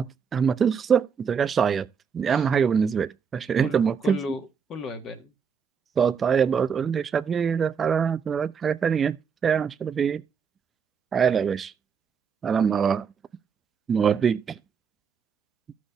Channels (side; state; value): left; quieter; 6.7 dB